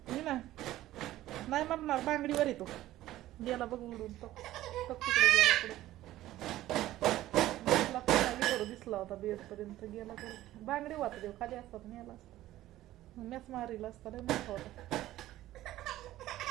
मी ना नाही म्हणणार बांगडीवर येतो गेला बघ उडून तो तिकडे गेला पुढे दिसला होता बेड पर्यंत गेला तर बांगडी वाटत देव खाली असतात नेला असता मॅच मारीला असता लय मोठा होता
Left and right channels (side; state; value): left; quieter; 14.9 dB